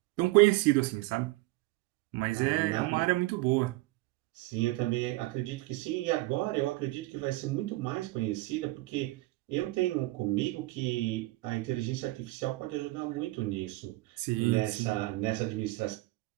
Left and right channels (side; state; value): left; quieter; 20.3 dB